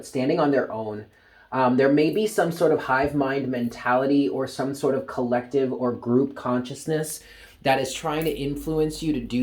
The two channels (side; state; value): both; identical; correlation 1.00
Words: standing on their own. There may be some sort of hive mind mentality or some sort of collective or group consciousness that is trying to influence you to